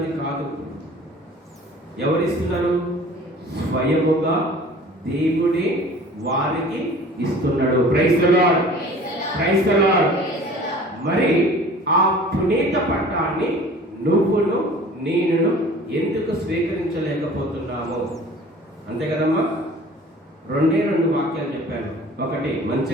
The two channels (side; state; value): both; normal; correlation 0.46